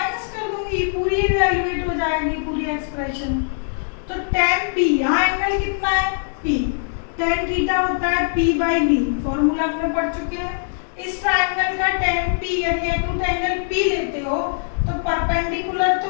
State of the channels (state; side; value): silent; right; digital silence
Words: कर दूंगी, पूरी इवैल्यूएट हो जाएगी पूरी एक्सप्रेशन। तो 10p, यहाँ एंगल कितना है p, tan थीटा होता है p बाई बी, फॉर्मूला हमने पढ़ चुके हैं। इस ट्राइंगल का tan p यदि एक्यूट एंगल p लेते हो तो परपेंडिकुलर तो